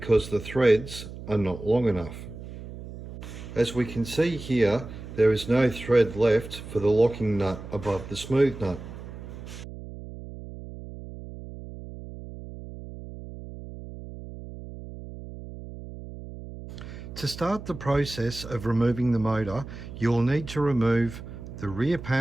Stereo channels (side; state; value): right; noise; hum, 12 dB below the sound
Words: the threads are not long enough. As we can see here, there is no thread left for the locking nut above the smooth nut. To start the process of removing the motor, you'll need to remove the rear